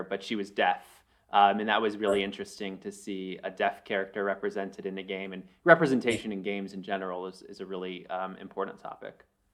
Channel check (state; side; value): identical; both; correlation 1.00